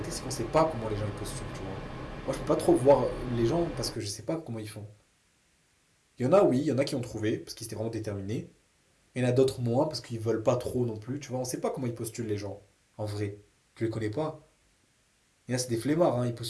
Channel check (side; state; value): both; identical; correlation 1.00